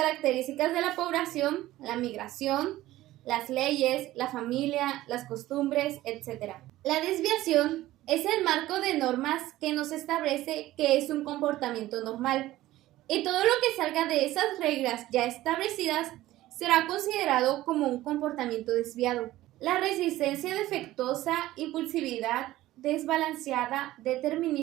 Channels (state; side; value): quieter; left; 15.9 dB